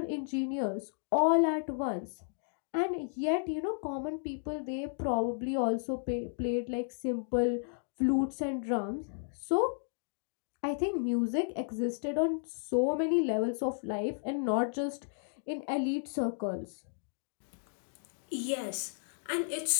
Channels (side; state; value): right; silent; digital silence